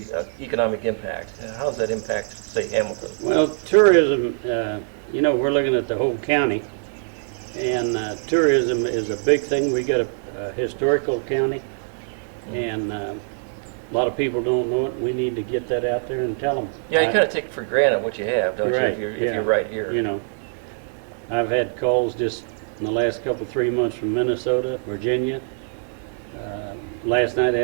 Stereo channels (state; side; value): silent; left; digital silence